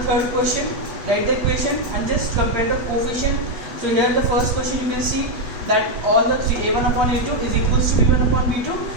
third question, write the equation and just compare the coefficient. So here in the first question you can see that all the three a1 upon a2 is equals to b1 upon b2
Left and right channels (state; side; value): late; left; 8.1 ms